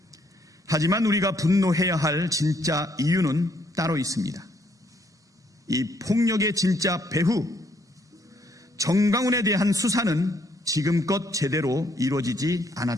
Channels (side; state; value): both; normal; correlation 0.69